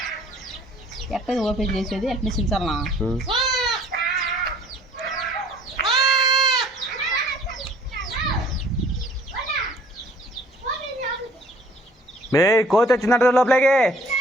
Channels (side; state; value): both; normal; correlation 0.56